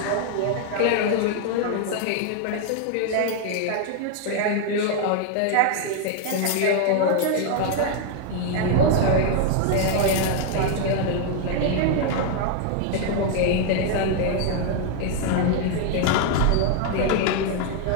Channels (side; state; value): both; different; correlation 0.00